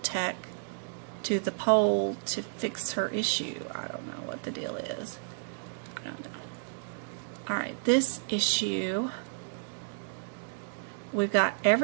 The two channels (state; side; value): silent; left; digital silence